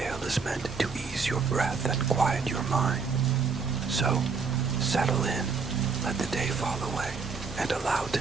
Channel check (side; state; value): left; quieter; 5.1 dB